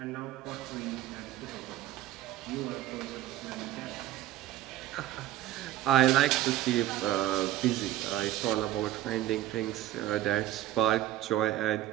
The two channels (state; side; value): quieter; left; 13.9 dB